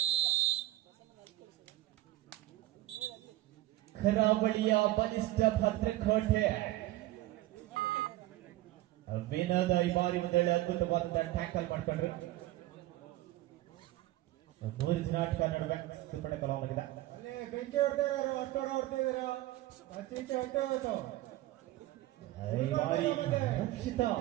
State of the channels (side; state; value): left; quieter; 16.3 dB